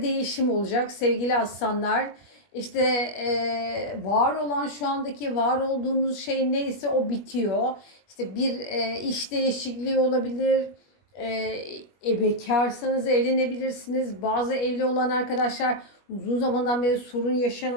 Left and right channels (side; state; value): right; late; 21 ms